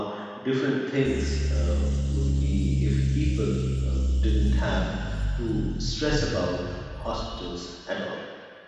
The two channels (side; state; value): both; identical; correlation 1.00